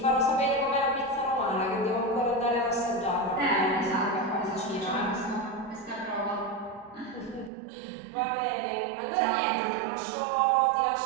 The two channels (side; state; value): left; drops out; at 7.5 s